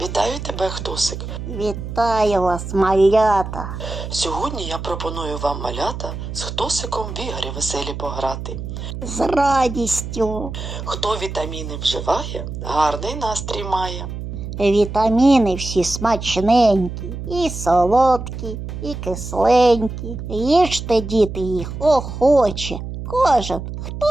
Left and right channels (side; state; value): right; noise; hum, 8 dB below the sound